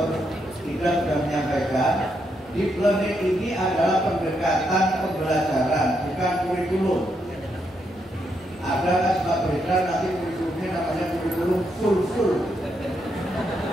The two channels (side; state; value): both; normal; correlation 0.79